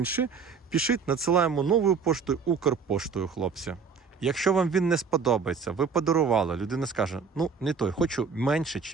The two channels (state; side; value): quieter; left; 5.6 dB